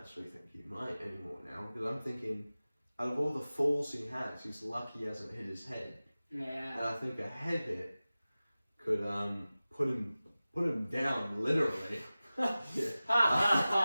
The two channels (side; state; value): both; inverted; correlation -0.97